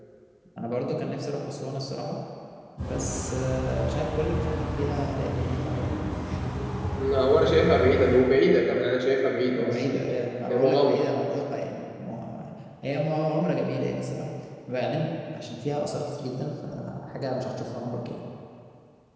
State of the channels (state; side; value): identical; both; correlation 1.00